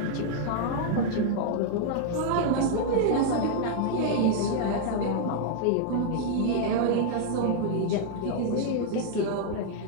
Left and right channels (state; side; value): different; both; correlation -0.01